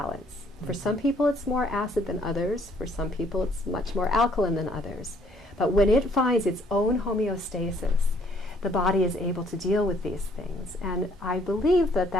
For some people it's more acid than others, for some people it's much more alkaline than others. But when it finds its own homeostasis, the body is able to deal with these things. And I believe that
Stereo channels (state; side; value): normal; both; correlation 0.64